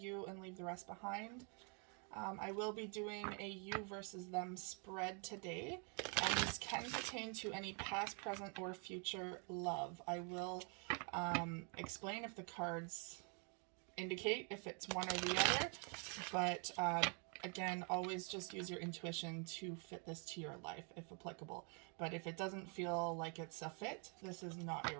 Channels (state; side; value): quieter; left; 37.8 dB